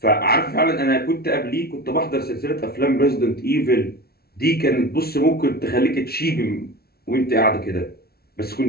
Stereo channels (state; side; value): late; right; 0.45 ms